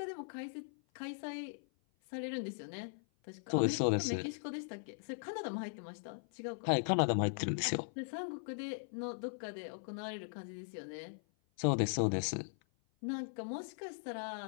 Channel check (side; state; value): right; silent; 52 dB below the other